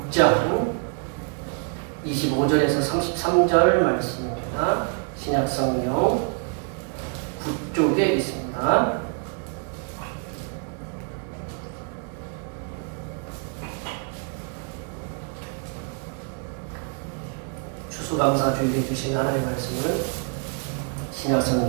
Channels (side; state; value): left; quieter; 38.9 dB